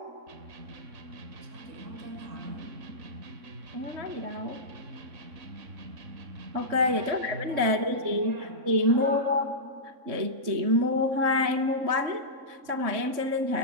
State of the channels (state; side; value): late; left; 3.6 ms